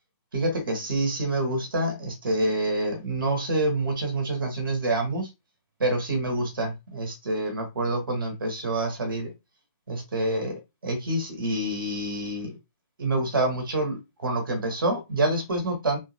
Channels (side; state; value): both; inverted; correlation -0.52